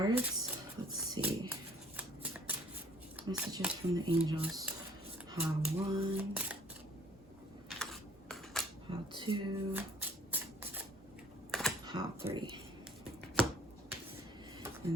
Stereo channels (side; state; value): both; normal; correlation 0.56